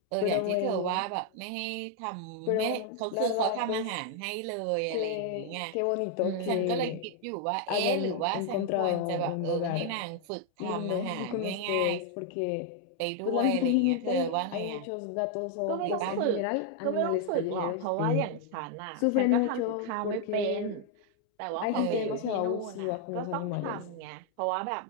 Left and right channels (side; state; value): both; different; correlation 0.00